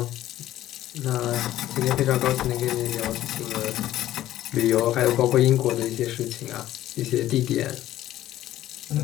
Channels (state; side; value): quieter; right; 13.7 dB